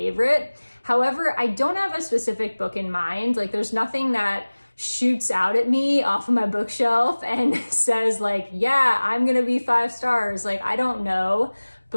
However, I don't have a specific book in mind. Like, there's nothing that shoots out at me off of my bookshelf and says like, yeah, I'm gonna be 5 stars. Like, I don't know,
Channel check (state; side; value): inverted; both; correlation -1.00